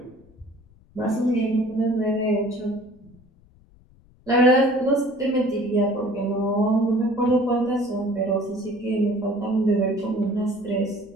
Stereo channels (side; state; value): left; noise; rumble, 29 dB below the sound